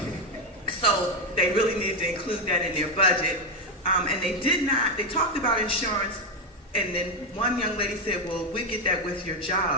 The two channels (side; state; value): both; normal; correlation 0.08